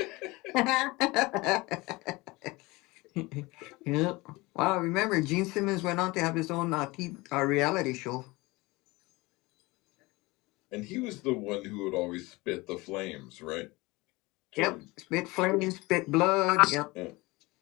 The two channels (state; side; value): quieter; right; 22.6 dB